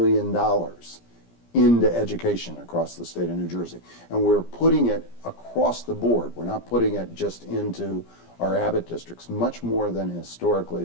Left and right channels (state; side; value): late; right; 17 ms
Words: into education across the state of New Jersey. And we're putting it across the board. We're not putting it just into our Abbott districts, much more than historically